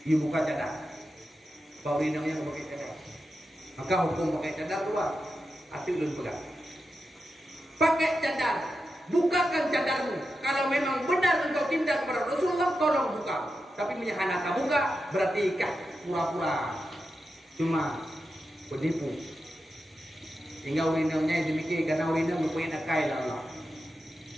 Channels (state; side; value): normal; both; correlation 0.89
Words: You buka cadar. Pak urinam yang pakai cadar. Maka hukum pakai cadar keluar. Hati ulun pegang. Pakai cadar. Bukakan cadarmu. Kalau memang benar engkau cinta kepada Rasulullah, tolong buka. Tapi menyahana tak buka, berarti ikat pura-pura. Cuma penipu. Hingga urinamnya demikian karena urinam berpoin akai lah Allah.